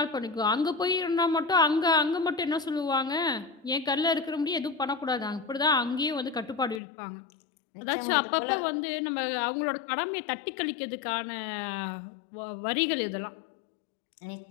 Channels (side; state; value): right; drops out; at 6.8 s